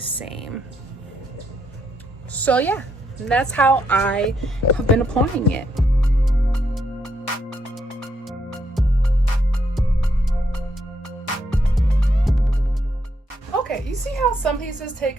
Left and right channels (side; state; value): both; normal; correlation 0.76